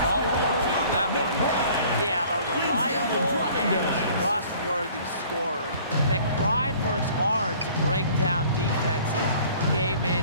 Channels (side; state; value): both; inverted; correlation -0.52